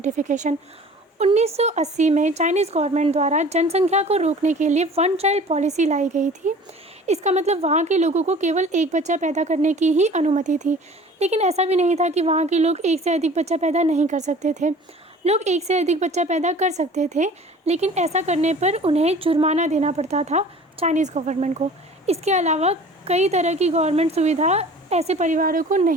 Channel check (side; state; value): both; normal; correlation 0.45